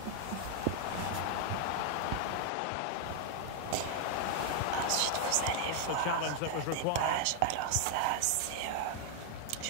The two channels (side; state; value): both; different; correlation 0.00